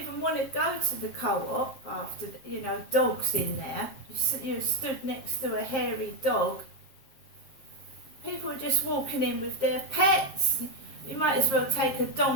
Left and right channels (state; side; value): late; right; 7.5 ms